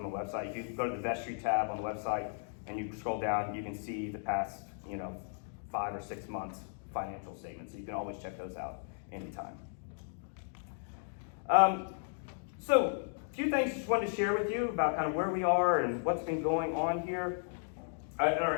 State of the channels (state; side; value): silent; right; digital silence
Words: the website. If you go to the vestry tab on the website and you scroll down, you can see the past, 5 or 6 months financial statements. So you can always check those out anytime. So a few things just wanted to share with you about kind of where we are and what's been going on here. At